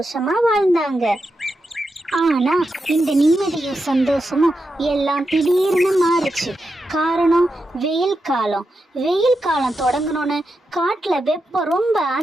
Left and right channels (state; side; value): normal; both; correlation 0.87